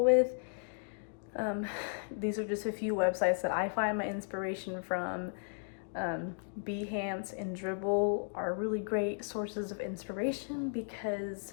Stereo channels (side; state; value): right; silent; digital silence